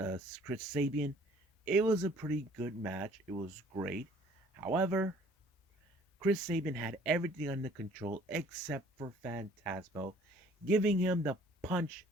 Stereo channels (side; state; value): both; normal; correlation 0.55